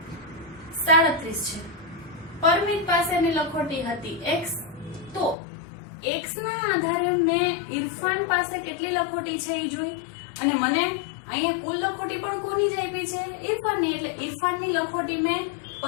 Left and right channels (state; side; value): drops out; right; at 5.4 s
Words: 37 છે, પરમિત પાસેની લખોટી હતી x. તો x ના આધારે મેં ઇરફાન પાસે કેટલી લખોટી છે એ જોઈ, અને મને અહીંયા કુલ લખોટી પણ કોની જ આપી છે? ઇરફાનની. એટલે ઇરફાનની લખોટી મેં